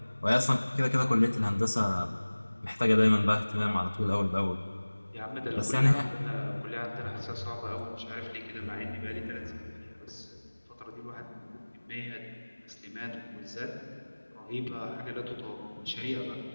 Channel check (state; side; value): inverted; both; correlation -1.00